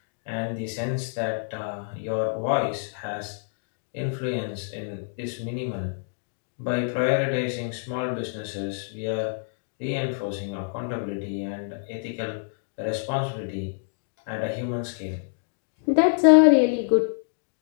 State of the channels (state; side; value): silent; right; digital silence